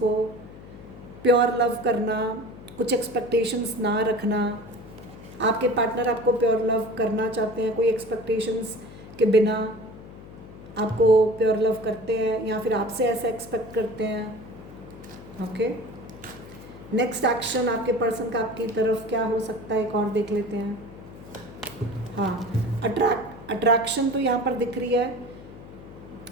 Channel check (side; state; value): left; noise; hum, 17 dB below the sound